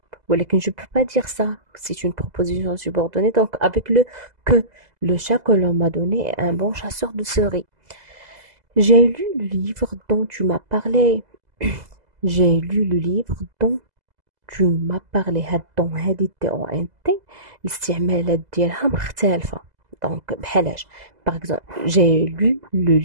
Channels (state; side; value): late; left; 2.0 ms